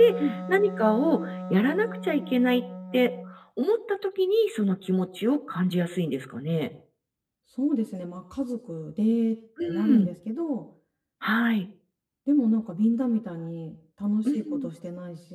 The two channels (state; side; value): identical; both; correlation 1.00